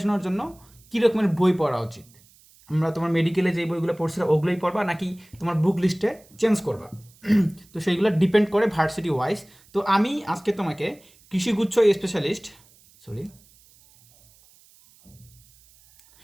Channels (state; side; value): noise; right; hiss, 28 dB below the sound